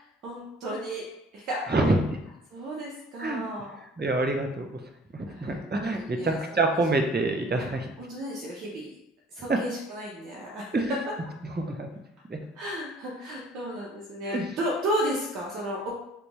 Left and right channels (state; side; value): normal; both; correlation 0.53